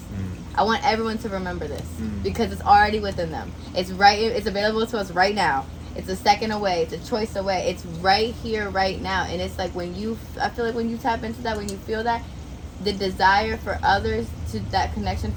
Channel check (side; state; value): both; identical; correlation 1.00